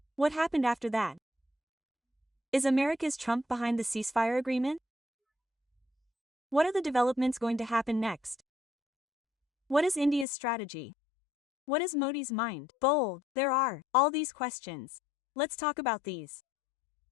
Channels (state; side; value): drops out; right; at 10.2 s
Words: What happened after that? Is America's Trump behind the ceasefire agreement? What are the developments going to happen next? What is India's strategy? What is Modi's mind? Bold, there are all these questions. Let's talk about these.